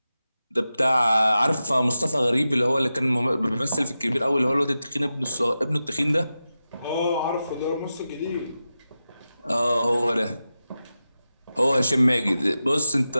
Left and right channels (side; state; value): both; inverted; correlation -0.92